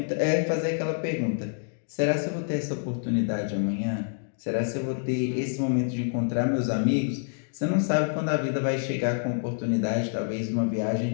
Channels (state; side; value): silent; right; digital silence